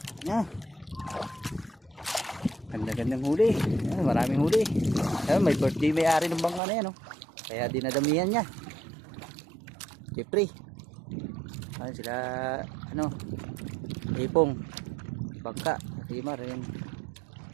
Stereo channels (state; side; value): drops out; left; at 6.6 s